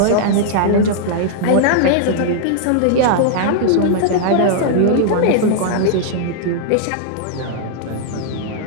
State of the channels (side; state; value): both; different; correlation -0.01